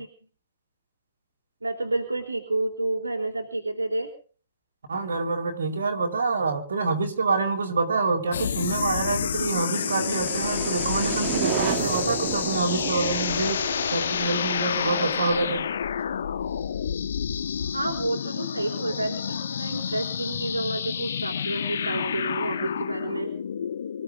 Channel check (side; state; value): both; inverted; correlation -0.69